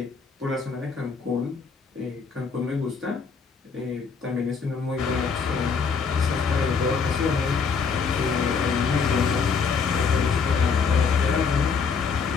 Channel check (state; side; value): quieter; right; 5.6 dB